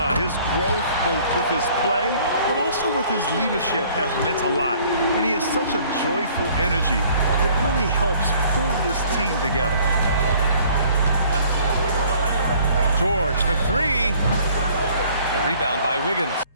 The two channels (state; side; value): inverted; both; correlation -0.57